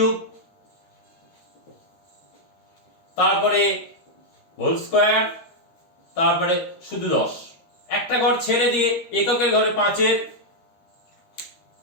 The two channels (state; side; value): late; right; 13 ms